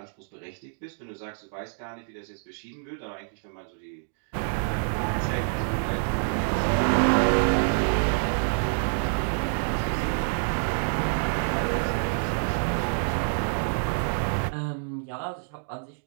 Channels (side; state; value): left; silent; digital silence